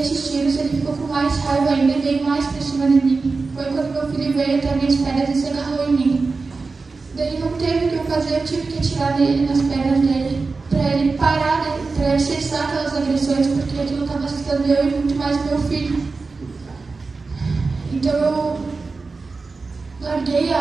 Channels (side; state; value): left; quieter; 4.1 dB